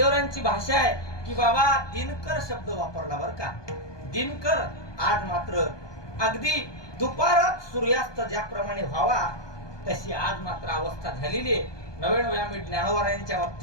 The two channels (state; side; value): late; right; 1.2 ms